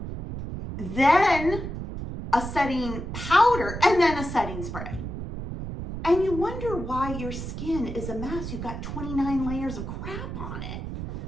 then a setting powder, and then a setting spray. And you wonder why your skin is a mess. You've got 29 layers of crap on it.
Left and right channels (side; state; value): right; noise; rumble, 7 dB below the sound